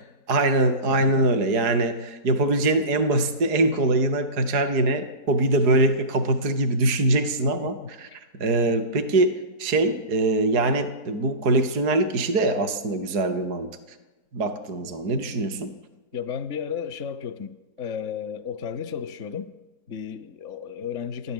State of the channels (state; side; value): late; left; 4.7 ms